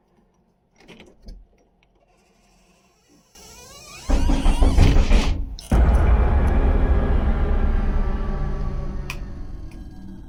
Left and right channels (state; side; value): identical; both; correlation 1.00